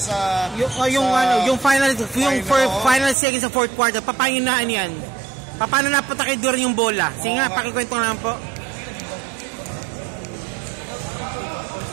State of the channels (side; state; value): left; drops out; at 3.2 s